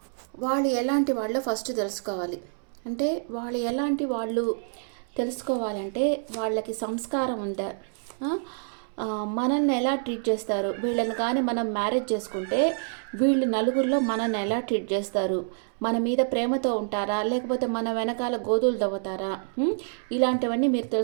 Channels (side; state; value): left; silent; 60 dB below the other